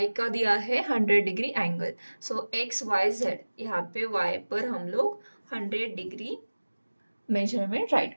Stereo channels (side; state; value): both; inverted; correlation -1.00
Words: का दिया है 100 डिग्री एंगल। सो एक्स वाई जेड यहाँ पे y पर हम लोग 100 डिग्री मेजरमेंट